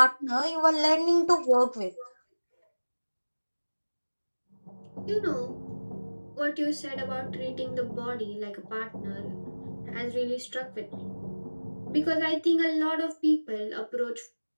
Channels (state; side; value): inverted; both; correlation -1.00